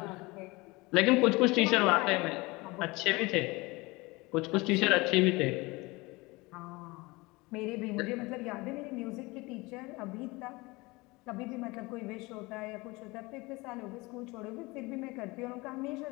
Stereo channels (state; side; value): quieter; right; 23.5 dB